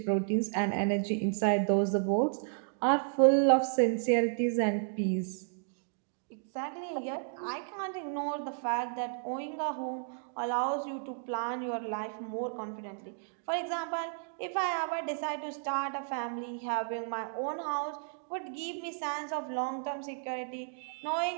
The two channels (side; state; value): left; silent; digital silence